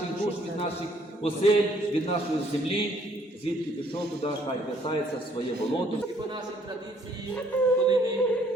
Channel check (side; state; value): both; normal; correlation 0.64